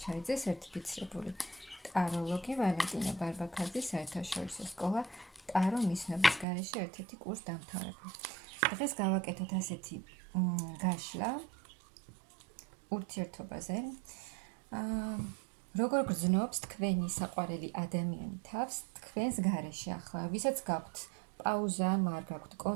სერტიფიცირებული ტაროლოგი, ვალენტინა ბარბაქაძის საერთაშორისო სკოლა ტარო მისნობის გარეშე ერთ-ერთი კურს დამთავრებული. დღეს გავაკეთოთ ასეთი გაშლა ურთიერთობაზე. როგორ გრძნობს თქვენი საყვარელი ადამიანი თავს თქვენს გარეშე ახლა, ვისაც გაქვთ პაუზა, არ გაქვთ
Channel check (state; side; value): drops out; left; at 6.5 s